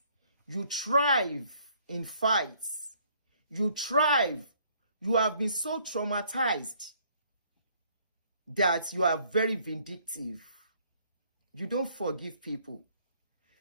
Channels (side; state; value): both; inverted; correlation -0.63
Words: You thrive in fights. You thrive. You have been so traumatized that you are very vindictive. You don't forgive people.